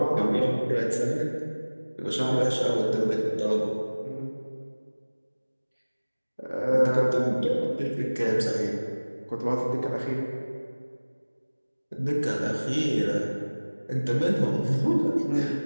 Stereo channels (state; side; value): inverted; both; correlation -1.00